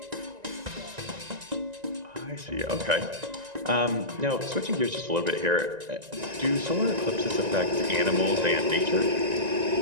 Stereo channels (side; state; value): left; late; 1.9 ms